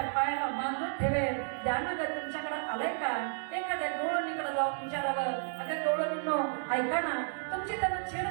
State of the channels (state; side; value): silent; left; digital silence